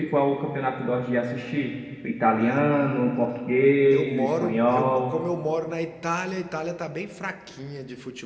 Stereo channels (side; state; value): both; identical; correlation 1.00